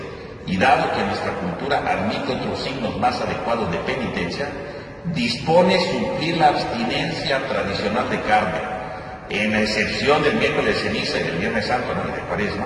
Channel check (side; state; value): both; identical; correlation 1.00